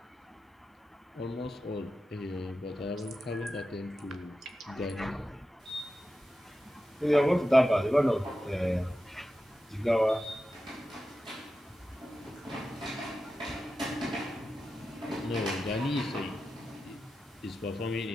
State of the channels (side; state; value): both; normal; correlation 0.92